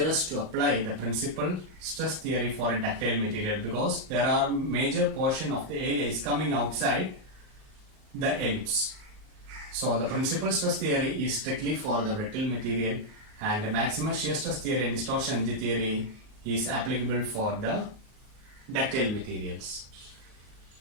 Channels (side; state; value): left; late; 38 ms